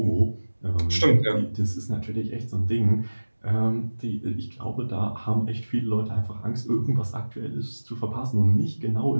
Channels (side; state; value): both; inverted; correlation -1.00